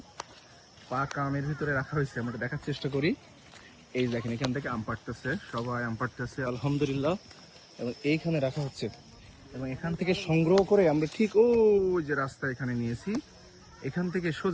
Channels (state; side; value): identical; both; correlation 1.00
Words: আমের ভিতরে রাখা হয়েছে। আমরা একটু দেখার চেষ্টা করি। এই দেখেন এখান থেকে আম পাড়তেছে, সবাই আম পাড়তেছে আলহামদুলিল্লাহ, এবং এইখানে রাখা হচ্ছে, এবং এখান থেকে সংগ্রহ করে আমরা ঠিক ওই যে রাস্তা এখানে নিয়েছি, এখান থেকে